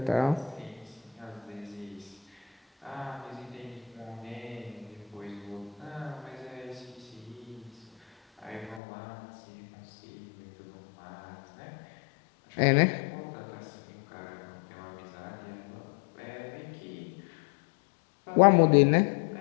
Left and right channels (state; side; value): drops out; right; at 8.8 s